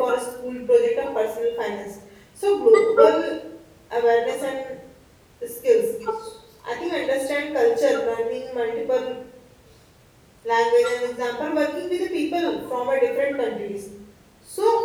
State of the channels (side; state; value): both; identical; correlation 1.00